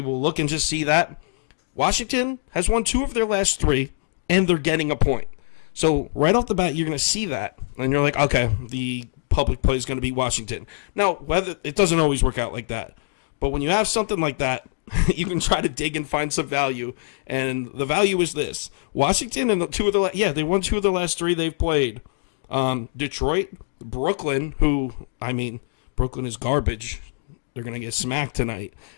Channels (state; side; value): silent; right; digital silence